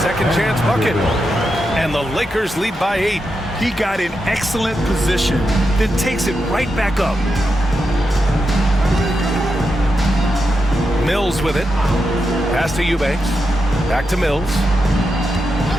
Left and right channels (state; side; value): normal; both; correlation 0.86